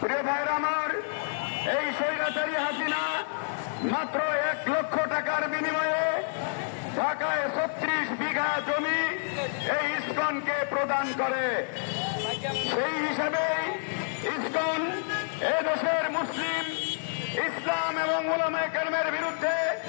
প্রিয় ভাইরা আমার, এই স্বৈরাচারী হাসিনা মাত্র 1 লক্ষ টাকার বিনিময়ে ঢাকায় 36 বিঘা জমি এই ইসকনকে প্রদান করে। সেই হিসাবেই ইসকন এদেশের মুসলিম, ইসলাম এবং উলামায়ে কেরামের বিরুদ্ধে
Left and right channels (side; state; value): right; silent; 59 dB below the other